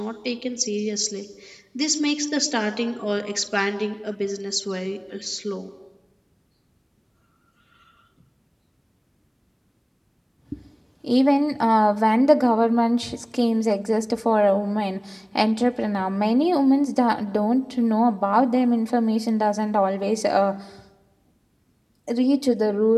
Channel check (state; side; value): identical; both; correlation 1.00